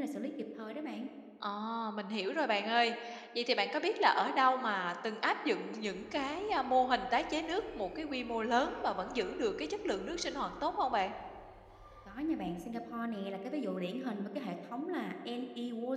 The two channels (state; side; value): identical; both; correlation 1.00